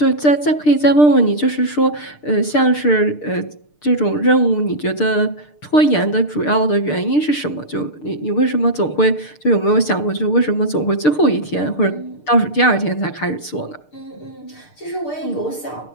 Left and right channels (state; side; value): late; right; 6.7 ms